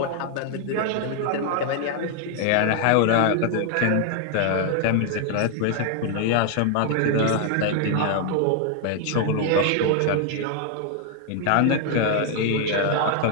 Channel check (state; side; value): different; both; correlation 0.00